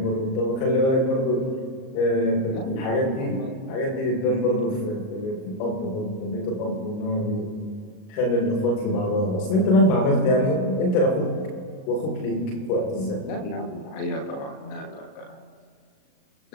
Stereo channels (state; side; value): late; right; 38 ms